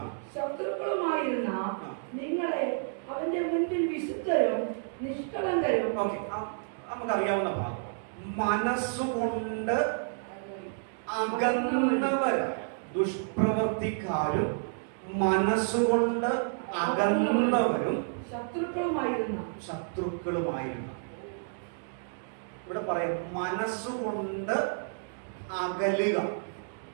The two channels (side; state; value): left; silent; digital silence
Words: ശത്രുക്കളുമായിരുന്ന നിങ്ങളെ അവന്റെ മുൻപിൽ വിശുദ്ധരും നിഷ്കളങ്കരും. നമുക്കറിയാവുന്ന ഭാഗം, മനസ്സുകൊണ്ട് അകന്നവരായ ദുഷ്പ്രവർത്തിക്കാരും മനസ്സുകൊണ്ട് അകന്നവരും ശത്രുക്കളുമായിരുന്ന. ഇവിടെ പറയാം, മനസ്സുകൊണ്ട് അകലുക.